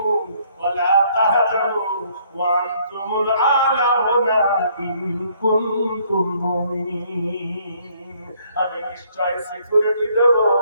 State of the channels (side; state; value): both; inverted; correlation -0.65